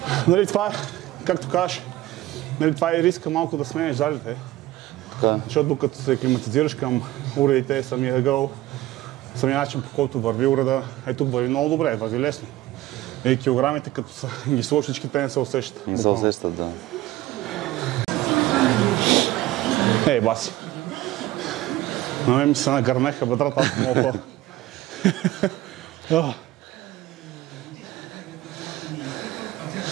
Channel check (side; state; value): left; quieter; 16.3 dB